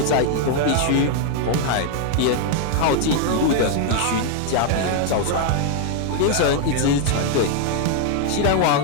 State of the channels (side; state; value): both; different; correlation 0.00